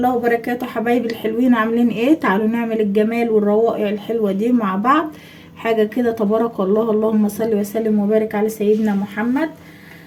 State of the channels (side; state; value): both; identical; correlation 1.00